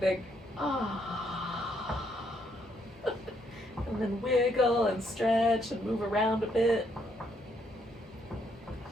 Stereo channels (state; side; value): normal; both; correlation 0.73